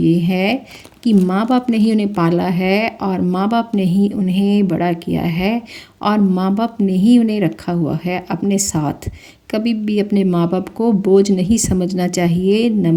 है कि माँ बाप ने ही उन्हें पाला है और माँ बाप ने ही उन्हें बड़ा किया है और माँ बाप ने ही उन्हें रखा हुआ है अपने साथ। कभी भी अपने माँ बाप को बोझ नहीं समझना चाहिए।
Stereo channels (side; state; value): both; identical; correlation 1.00